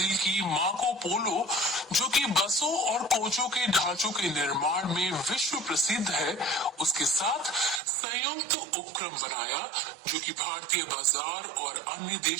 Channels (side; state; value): left; drops out; at 7.8 s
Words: की मार्को पोलो, जो कि बसों और कोचों के ढांचों के निर्माण में विश्व प्रसिद्ध है, उसके साथ संयुक्त उपक्रम बनाया जो कि भारतीय बाजार और अन्य